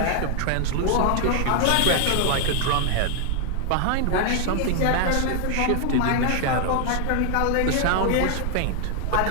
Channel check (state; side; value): different; both; correlation 0.00